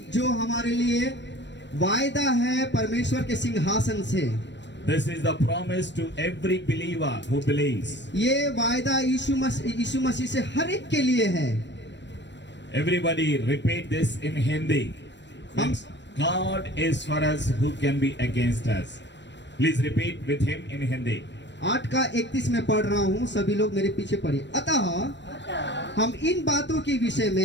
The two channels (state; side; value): late; right; 0.52 ms